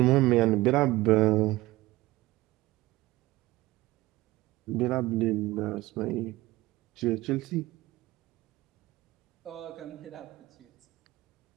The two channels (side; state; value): left; quieter; 18.8 dB